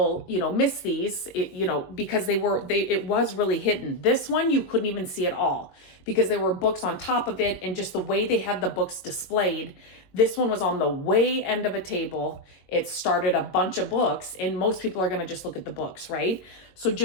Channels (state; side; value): late; right; 22 ms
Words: you know, miss these, you know, because it was really hidden. This one, you couldn't even see at all because there were books on top of it, and just the way they had the books displayed. This one was on the way end of a table. It started a bunch of books, and most people are going to just look at the books, right? So